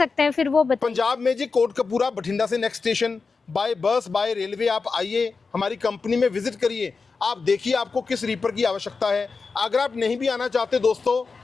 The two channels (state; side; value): quieter; right; 4.6 dB